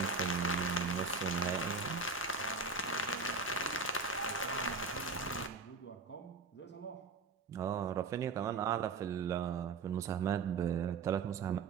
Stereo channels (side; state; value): left; quieter; 4.3 dB